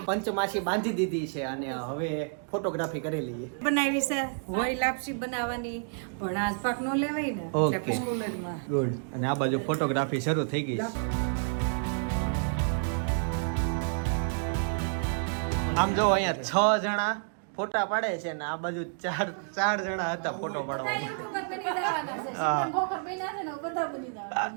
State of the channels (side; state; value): left; silent; 58 dB below the other